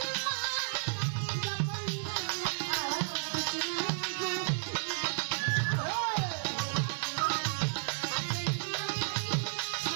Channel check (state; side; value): silent; left; digital silence